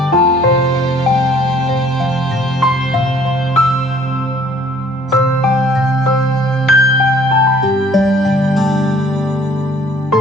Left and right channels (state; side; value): normal; both; correlation 0.57